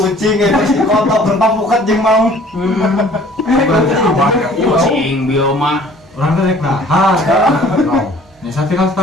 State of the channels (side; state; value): both; normal; correlation 0.53